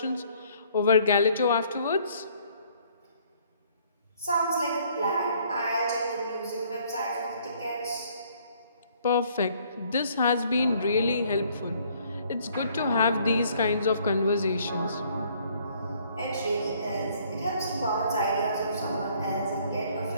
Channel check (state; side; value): inverted; both; correlation -0.62